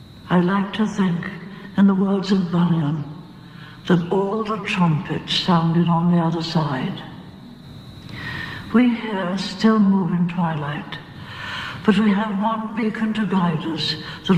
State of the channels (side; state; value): both; identical; correlation 1.00